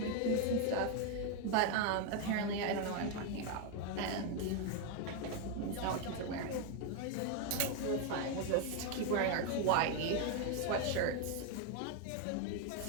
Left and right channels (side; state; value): both; different; correlation 0.01